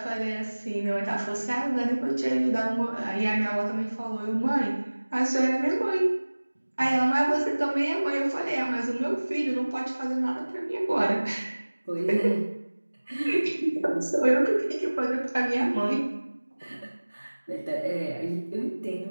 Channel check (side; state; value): both; inverted; correlation -1.00